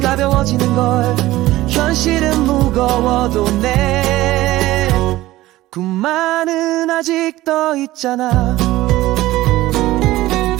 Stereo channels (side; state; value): left; quieter; 16.8 dB